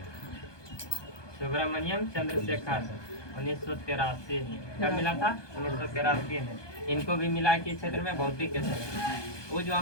सुब्रमण्यम चंद्रशेखर 1983 में। कब मिला था? 1983 में। इनको भी मिला कि क्षेत्र में भौतिक के क्षेत्र में। वो जो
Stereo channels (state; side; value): late; right; 1.2 ms